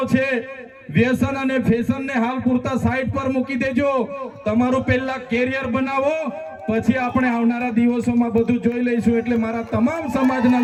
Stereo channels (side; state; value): both; identical; correlation 1.00